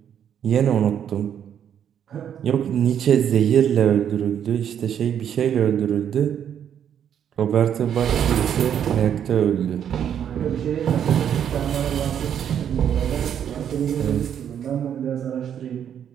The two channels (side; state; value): left; quieter; 9.1 dB